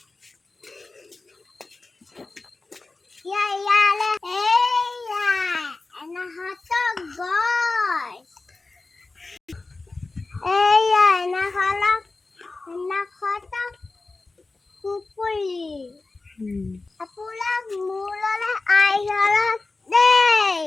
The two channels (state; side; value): quieter; right; 3.5 dB